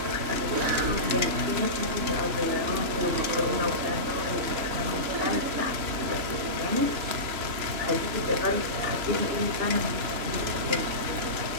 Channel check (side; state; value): left; late; 3.0 ms